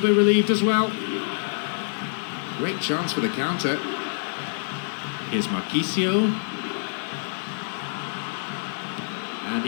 relieved as well. Great chance for the counter. Here's Marquisio. And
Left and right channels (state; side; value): silent; right; digital silence